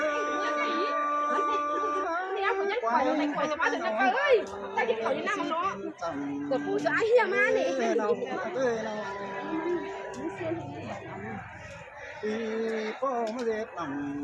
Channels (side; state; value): both; identical; correlation 1.00